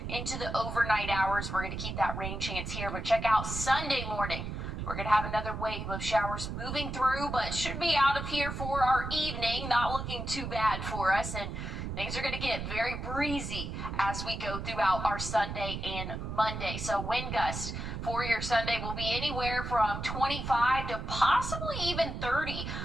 into the overnight hours. We're going to keep that rain chance here, but check out Sunday morning. We're going to have another wave of showers moving through, but should be out of here for our evening. Not looking too bad for us, and things are going to get very breezy as we go throughout our Sunday and Monday. So wind gusts for your Sunday will be anywhere from 25 to possibly even 30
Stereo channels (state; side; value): noise; right; rumble, 5 dB below the sound